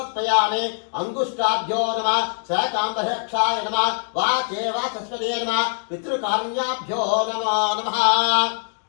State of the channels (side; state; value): right; silent; digital silence